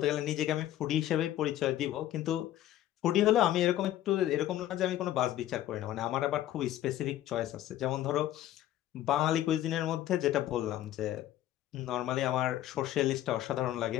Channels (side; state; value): right; quieter; 13.1 dB